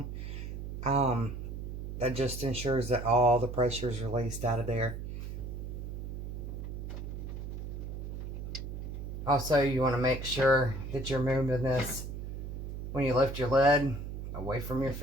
That just ensures that all the pressure is released out of there. Also, you want to make sure that you're moving this when you lift your lid away from your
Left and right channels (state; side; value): noise; right; hum, 7 dB below the sound